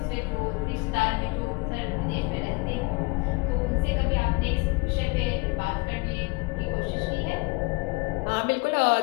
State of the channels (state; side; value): quieter; right; 27.2 dB